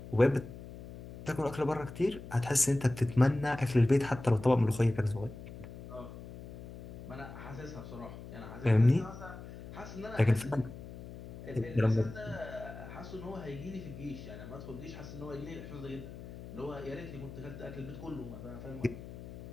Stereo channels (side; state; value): left; noise; hum, 13 dB below the sound